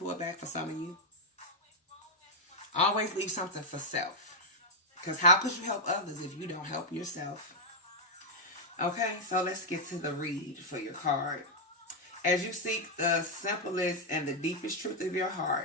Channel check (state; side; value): normal; both; correlation -0.01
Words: back for some of you. Always leave something for self. Because how could you help others if you don't help yourself? Okay, so let's get to the read for your card. As you seek the simplest and the deepest truth of your